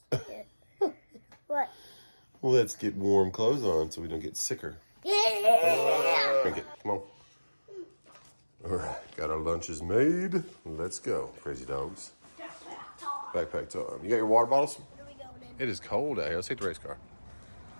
get. What? Well, let's get warm clothes on so we don't get sicker. Yeah! Drink it. Come on. All right. Got our lunches made. Let's go. Crazy dogs. Backpack time. You got your water bottles? Where are we going in? It is cold out here. Let's take the race car.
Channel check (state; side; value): inverted; both; correlation -1.00